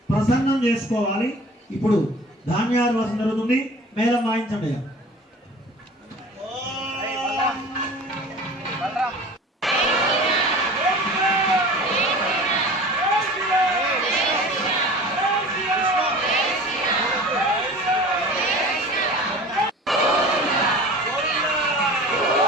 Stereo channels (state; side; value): normal; both; correlation 0.41